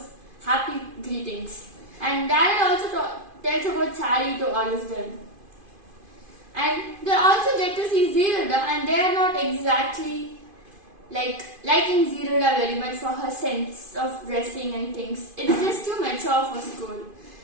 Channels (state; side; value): late; left; 2.5 ms